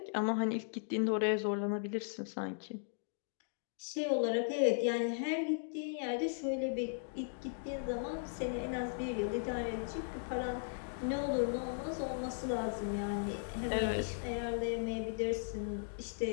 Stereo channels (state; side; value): silent; right; digital silence